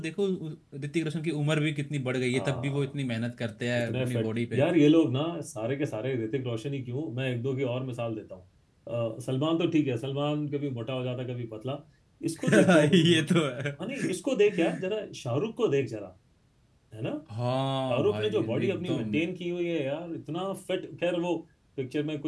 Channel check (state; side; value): identical; both; correlation 1.00